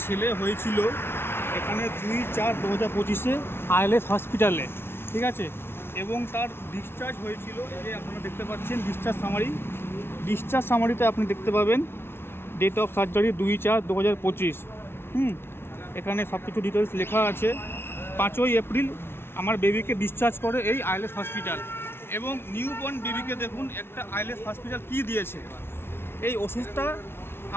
ছেলে হয়েছিল এখানে 2/4/2025 আইএলএস হসপিটালে, ঠিক আছে। এবং তার ডিসচার্জ হয়েছিল, এই যে আপনারা দেখতে পাচ্ছেন ডিসচার্জ সামারিতে আপনি দেখতে পাবেন ডেট অফ সার্জারি 2/4/2025। এখানে সব কিছু ডিটেলস লেখা আছে। 5ই এপ্রিল আমার বেবিকে ডিসচার্জ করে এই আইএলএস হসপিটাল। এবং নিউবর্ন বেবিকে দেখুন একটা আইএলএস হসপিটাল কী দিয়েছে। এই ওষুধটা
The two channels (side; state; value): right; late; 0.12 ms